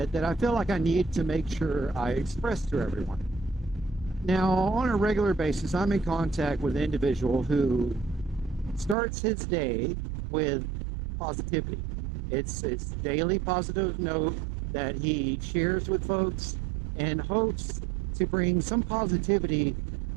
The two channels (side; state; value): left; drops out; at 9.0 s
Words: that I feel like I need to make sure I express to everyone. Now, on a regular basis, I'm in contact with an individual who starts his day with positivity. It's daily positive note that he shares with folks and hopes to bring some positivity